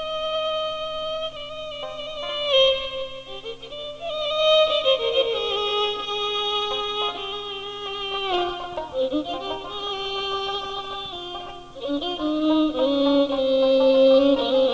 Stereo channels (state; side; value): identical; both; correlation 1.00